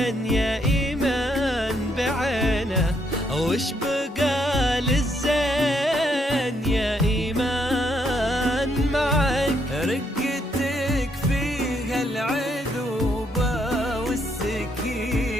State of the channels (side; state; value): both; normal; correlation 0.74